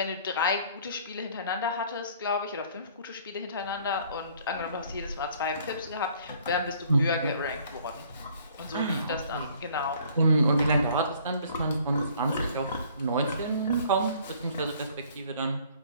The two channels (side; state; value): both; inverted; correlation -0.57